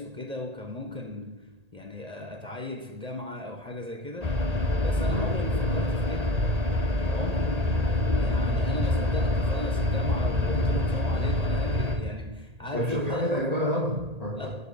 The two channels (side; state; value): left; late; 1.8 ms